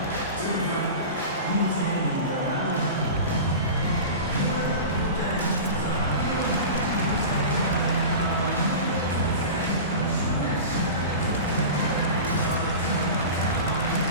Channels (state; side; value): inverted; both; correlation -0.31